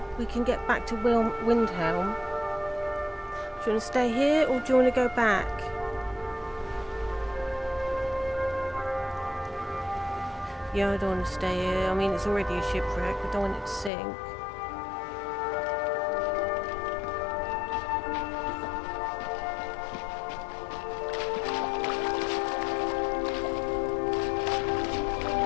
we can get back to Windhelm. Do you want to stay here or do you want to go back? Yeah, I don't want to stay here. I mean, it's already a shipwreck. I don't want it to sink.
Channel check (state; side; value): drops out; right; at 13.9 s